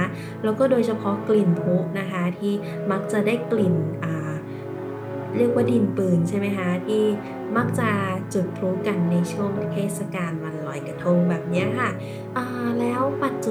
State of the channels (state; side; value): identical; both; correlation 1.00